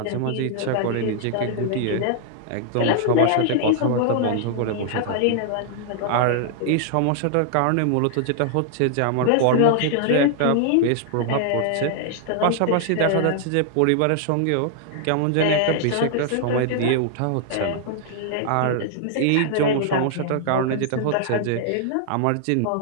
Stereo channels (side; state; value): both; different; correlation -0.01